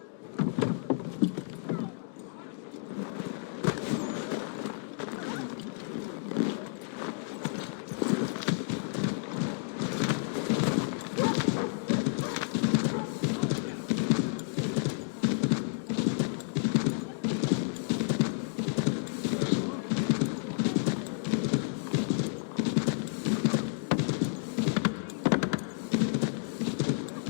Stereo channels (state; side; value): silent; right; digital silence